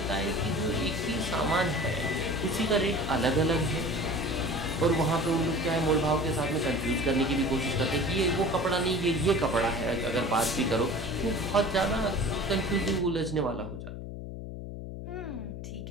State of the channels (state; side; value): noise; left; hum, 8 dB below the sound